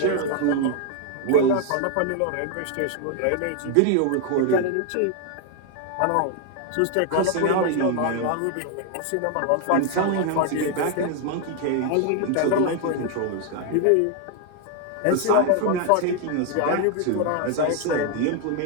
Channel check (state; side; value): different; both; correlation 0.01